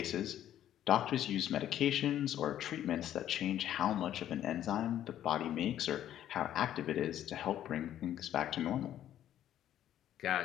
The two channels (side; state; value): right; quieter; 11.5 dB